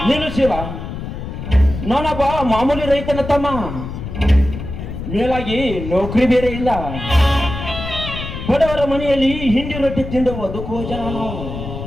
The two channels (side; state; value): left; noise; rumble, 8 dB below the sound